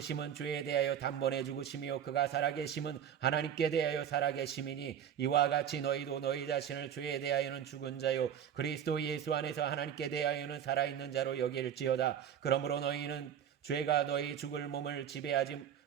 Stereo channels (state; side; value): quieter; left; 9.2 dB